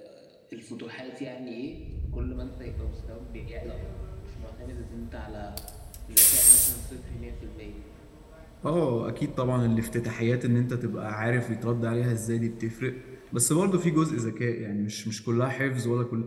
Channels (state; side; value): identical; both; correlation 1.00